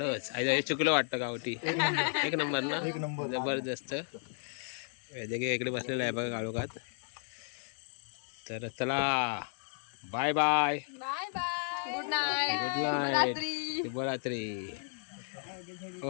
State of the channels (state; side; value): silent; right; 55 dB below the other